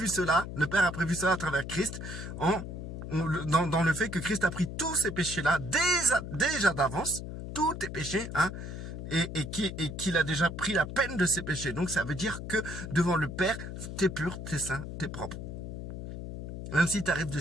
cela, le Père a prévu cela à travers Christ, dans le fait que Christ a pris tous ces péchés-là déjà d'avance, tous tes péchés, hein, et qu'il a déjà pris la peine de ces péchés. Donc ça veut dire que devant le Père, t'es pur, t'es saint, t'es propre. Même si tu arrives de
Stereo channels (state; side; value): noise; left; hum, 8 dB below the sound